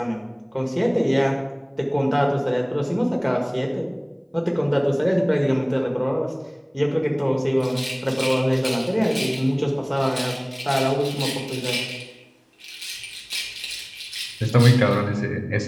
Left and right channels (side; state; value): both; identical; correlation 1.00